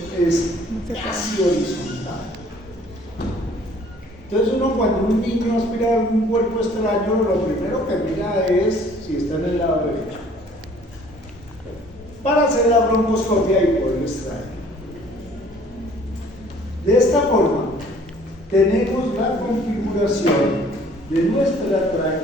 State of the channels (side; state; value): both; normal; correlation 0.55